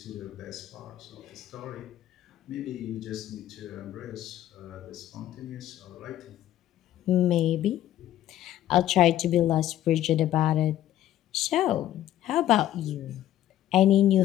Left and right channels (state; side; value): quieter; right; 12.8 dB